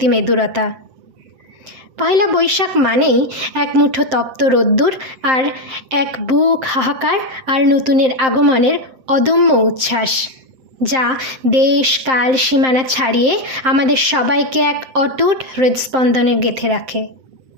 পয়লা বৈশাখ মানেই এক মুঠো তপ্ত রোদ্দুর আর এক বুক হাহাকার আর নতুনের আগমনের অদম্য উচ্ছ্বাস, যা দেশ কাল সীমানা ছাড়িয়ে আমাদের সবাইকে এক অটুট হৃদস্পন্দনে গেঁথে রাখে।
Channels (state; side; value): late; left; 7.7 ms